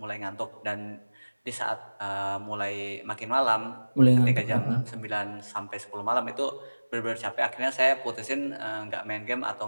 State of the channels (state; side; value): inverted; both; correlation -1.00